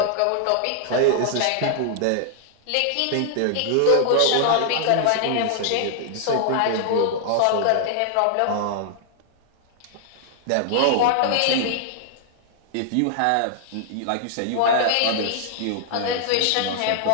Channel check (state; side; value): different; both; correlation -0.01